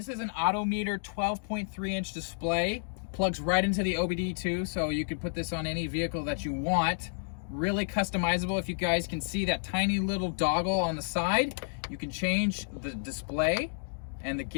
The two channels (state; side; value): silent; right; digital silence